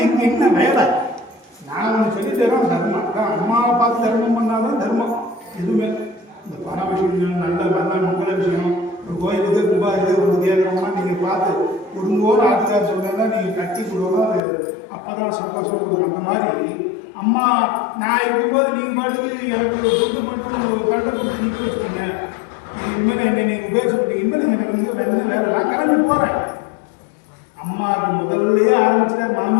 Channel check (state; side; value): drops out; right; at 14.4 s